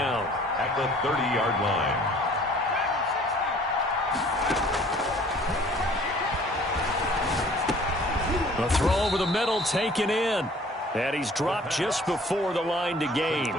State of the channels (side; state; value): both; normal; correlation 0.53